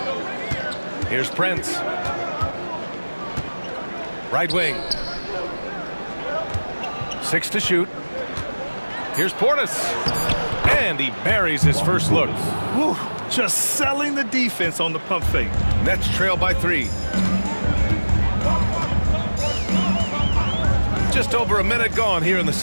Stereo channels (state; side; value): inverted; both; correlation -1.00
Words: Here's Prince. Right wing. 6 to shoot. Here's Portis. And he buries his first look. Whew, just selling the defense on the pump fake. Nets trail by 3. Just over a minute gone here in the